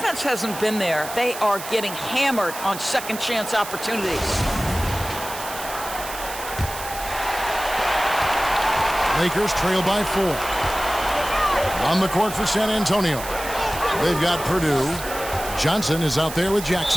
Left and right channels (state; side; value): noise; right; hiss, 10 dB below the sound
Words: hasn't been there. They are getting hammered on second chance opportunities. Lakers trail by 4. On the court for San Antonio. They've got Purdue. Johnson is out there with